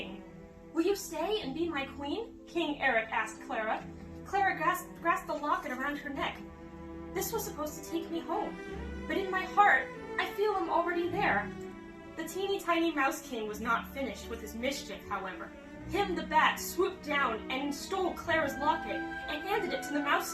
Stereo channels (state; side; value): identical; both; correlation 1.00